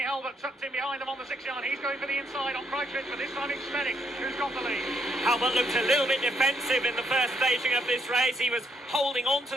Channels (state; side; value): normal; both; correlation 0.74